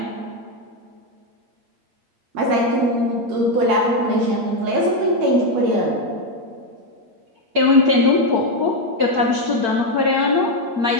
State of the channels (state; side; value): late; left; 8.6 ms